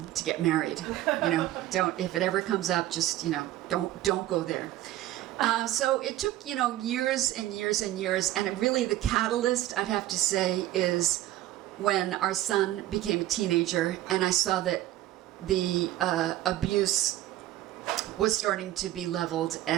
to get married. Don't, if it ever comes up, just, don't go there. So it took, years and years and years. And really the catalyst, I'd have to say, is when our son became a teenager and I saw that the abuse was starting to be leveled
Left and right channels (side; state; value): left; quieter; 14.6 dB